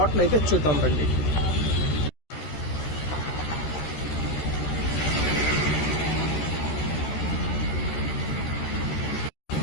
అయితే చూద్దాం రండి.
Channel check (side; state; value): right; late; 13 ms